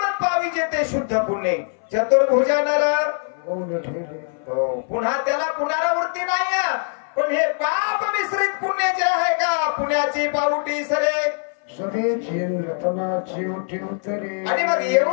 पावी जेते शुद्ध पुण्य चतुर्भुजा नर मौन ठेले हो पुन्हा त्याला पुनरावृत्ती नाही पण हे पाप मिश्रित पुण्य जे आहे का पुण्याची पावटी सरे सगळे झेल रतनाची उठी उतरे आणि मग येऊ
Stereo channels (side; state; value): right; silent; 61 dB below the other